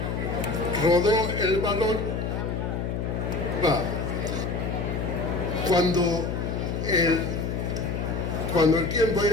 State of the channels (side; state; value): left; noise; hum, 2 dB below the sound